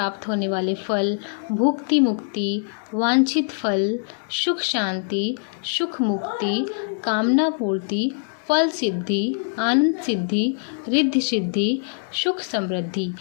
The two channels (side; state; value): right; silent; 63 dB below the other